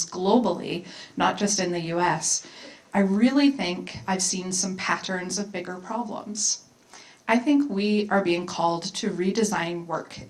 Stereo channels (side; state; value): both; identical; correlation 1.00